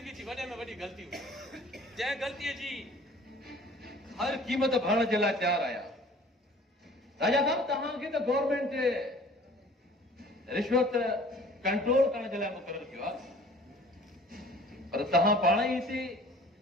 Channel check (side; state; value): both; normal; correlation 0.49